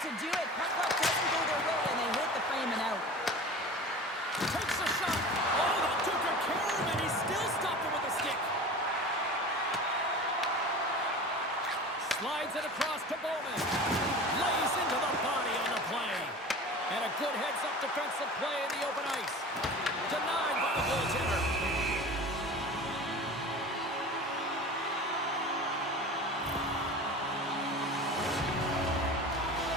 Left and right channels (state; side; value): normal; both; correlation 0.36